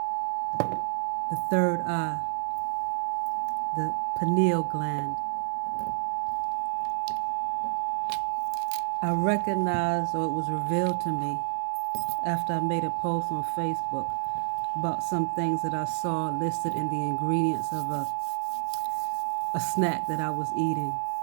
the third eye, the pineal gland. I recognized, or it was revealed to me after I made a post on Facebook about some things that I saw listed in the ingredients of a snack that I was eating.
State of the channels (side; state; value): left; silent; 59 dB below the other